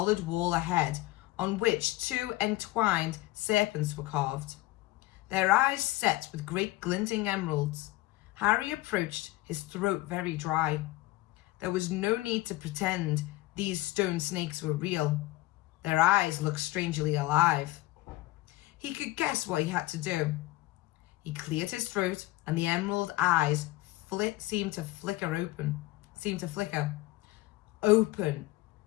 wall ahead, on which 2 entwined serpents were carved. Their eyes set with great glinting emeralds. Harry approached, his throat very dry. There was no need to pretend these stone snakes were real. Their eyes looked strangely alive. He could guess what he had to do. He cleared his throat, and the emerald eyes seemed to flicker. Open,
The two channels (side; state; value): right; quieter; 18.3 dB